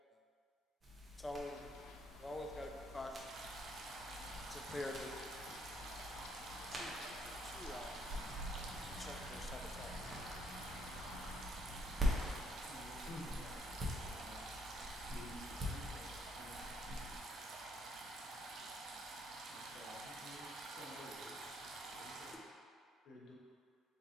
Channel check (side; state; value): both; normal; correlation 0.69